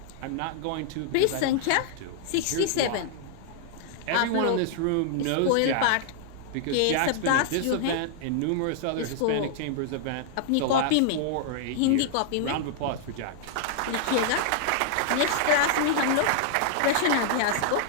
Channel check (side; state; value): both; different; correlation -0.01